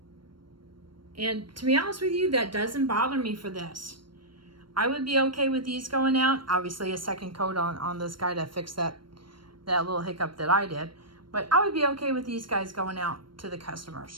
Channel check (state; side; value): late; left; 0.72 ms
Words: And to be honest with you, that doesn't bother me for this. I would be okay with these going out. Obviously a second coat on this guy to fix that little hiccup that I did. But I would be okay with these guys going out to the